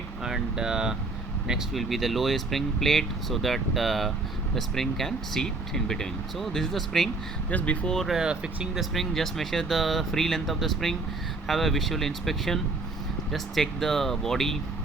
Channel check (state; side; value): quieter; left; 3.4 dB